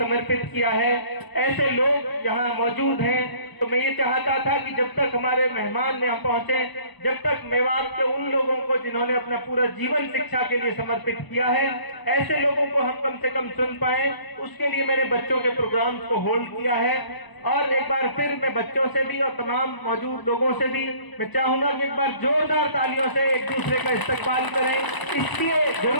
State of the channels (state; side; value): late; right; 1.0 ms